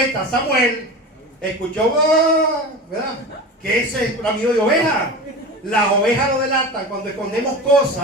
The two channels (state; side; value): normal; both; correlation 0.30